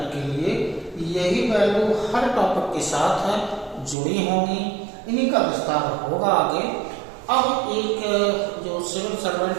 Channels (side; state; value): left; drops out; at 4.0 s